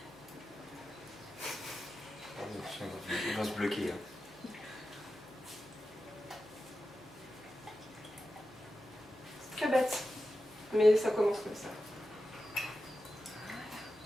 Il va se bloquer. Hein. C'est très bête. Mais ça commence comme ça.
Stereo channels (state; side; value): noise; left; hum, 29 dB below the sound